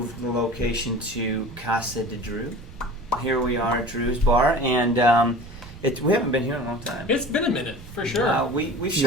the location to Casa de Drew. Here we are at Drew's Bar, and we haven't been here in a long time. It's been a minute, for sure. We've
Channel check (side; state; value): right; noise; rumble, 17 dB below the sound